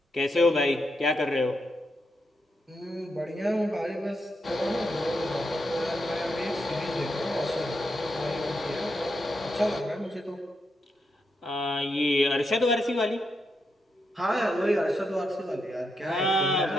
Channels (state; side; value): normal; both; correlation 0.82